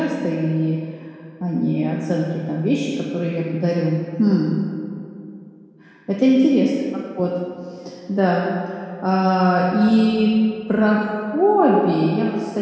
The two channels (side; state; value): both; identical; correlation 1.00